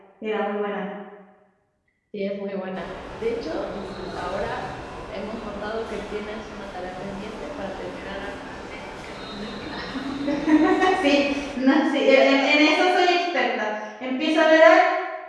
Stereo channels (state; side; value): identical; both; correlation 1.00